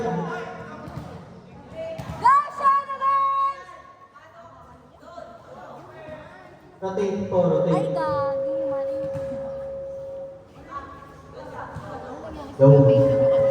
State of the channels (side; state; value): both; identical; correlation 1.00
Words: Rotate po, rotate. Ay, gagi, mali.